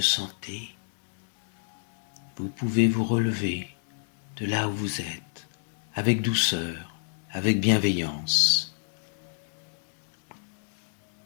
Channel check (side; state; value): right; silent; 59 dB below the other